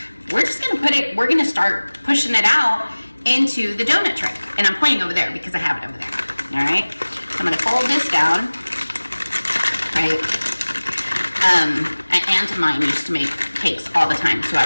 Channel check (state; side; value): inverted; both; correlation -1.00